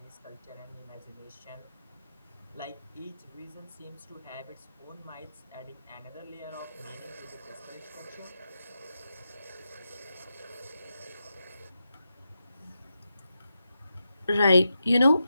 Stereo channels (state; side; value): inverted; both; correlation -0.88